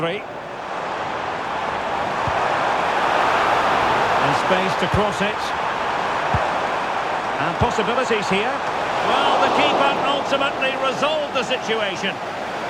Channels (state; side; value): identical; both; correlation 1.00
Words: And space to cross it. And possibilities here. Well, the keeper ultimately resolved the situation.